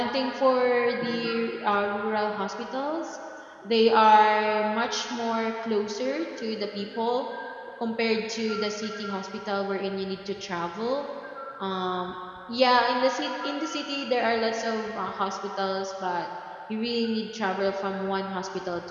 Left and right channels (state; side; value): identical; both; correlation 1.00